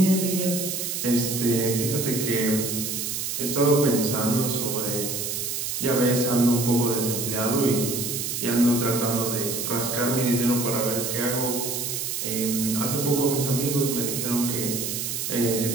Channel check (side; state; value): right; noise; hiss, 3 dB below the sound